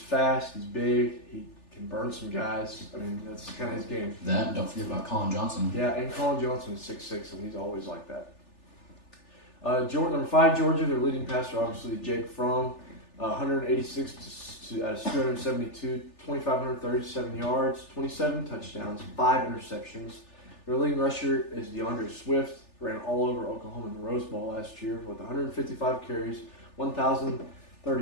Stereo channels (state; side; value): late; right; 3.4 ms